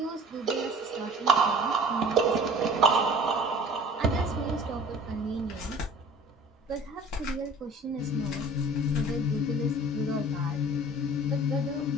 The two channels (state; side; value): normal; both; correlation 0.46